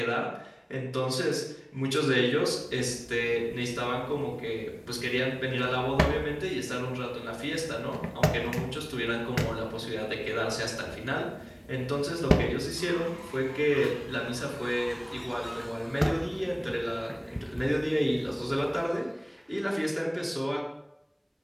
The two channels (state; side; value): identical; both; correlation 1.00